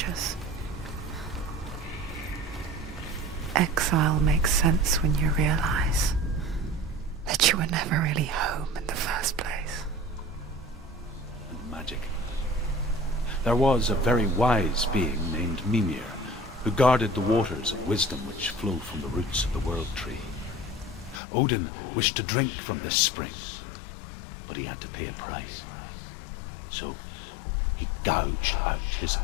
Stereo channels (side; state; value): right; drops out; at 21.2 s